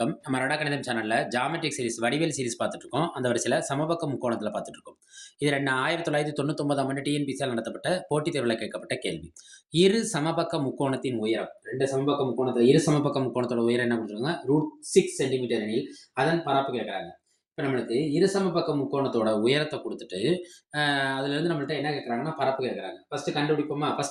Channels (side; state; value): both; identical; correlation 1.00